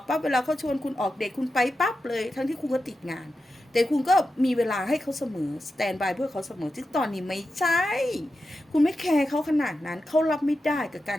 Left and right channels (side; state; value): both; normal; correlation 0.90